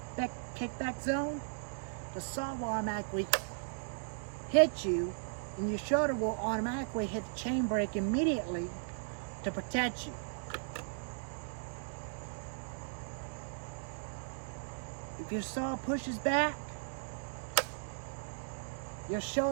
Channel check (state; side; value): silent; left; digital silence